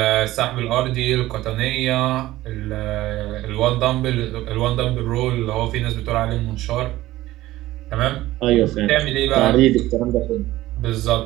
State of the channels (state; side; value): quieter; left; 16.3 dB